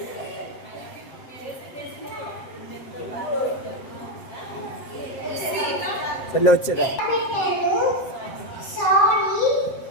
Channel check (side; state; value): right; late; 7.7 ms